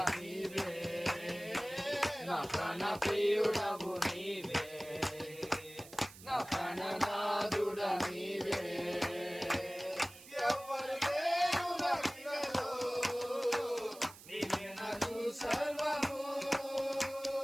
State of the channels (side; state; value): right; noise; hiss, 18 dB below the sound